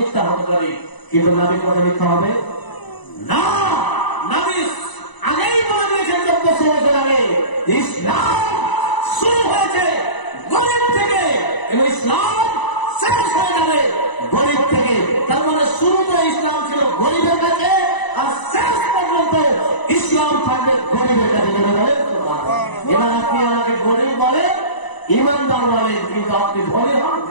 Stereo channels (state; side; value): late; right; 1.0 ms